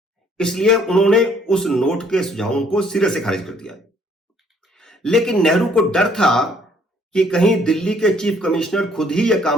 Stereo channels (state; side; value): normal; both; correlation 0.63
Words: इसलिए उन्होंने उस नोट के सुझावों को सिरे से खारिज कर दिया। लेकिन नेहरू को डर था कि कहीं दिल्ली के चीफ कमिश्नर खुद ही यह